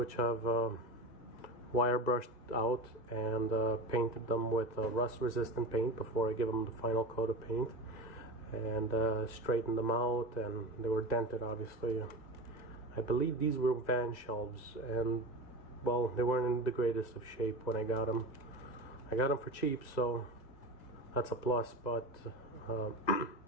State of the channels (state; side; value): late; right; 2.0 ms